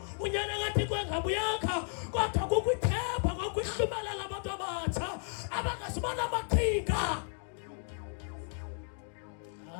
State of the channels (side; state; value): right; silent; 55 dB below the other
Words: unyana kaThixo engabuyakha kodwa kukwithemba kwakwihlumelela abantu abatsha abangazibona amaqhinga